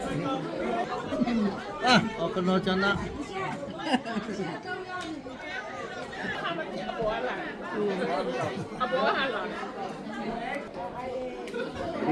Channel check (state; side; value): identical; both; correlation 1.00